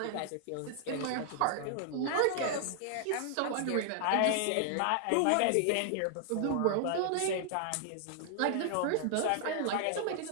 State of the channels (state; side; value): different; both; correlation 0.00